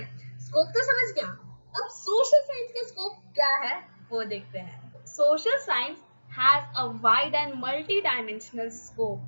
स्कोप तो समझ गया। अब सोशल साइंस का स्कोप क्या है वो देखते हैं। Social science has a wide and multi dimensional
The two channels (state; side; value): inverted; both; correlation -1.00